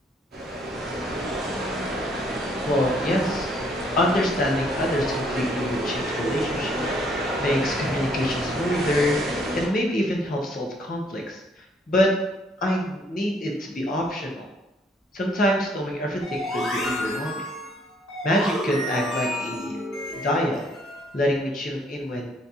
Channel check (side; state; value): both; normal; correlation 0.65